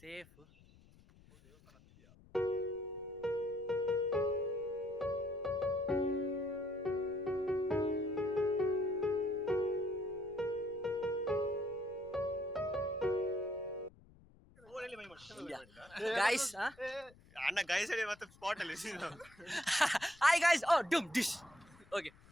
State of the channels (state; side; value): noise; left; rumble, 25 dB below the sound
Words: ಗೈಸ್ ಅಣ್ಣ ಗೈಸ್ ಹೇಳಿ ಮತ್ತೆ ಸ್ಪಾಟ್ ಅಲ್ಲಿ ಹಾಯ್ ಗೈಸ್ ಓ ಡುಮ್ ಡಿಶ್ ಓಕೆ